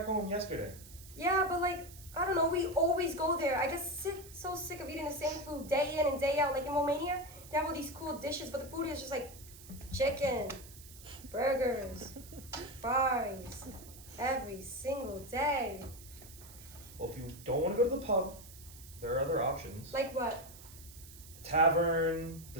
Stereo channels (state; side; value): noise; right; hiss, 18 dB below the sound